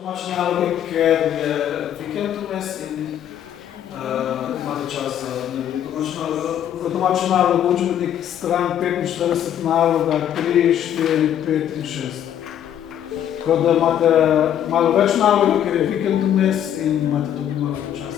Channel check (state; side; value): quieter; right; 10.2 dB